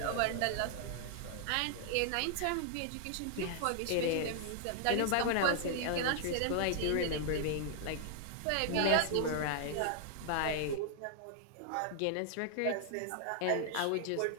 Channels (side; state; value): both; different; correlation 0.00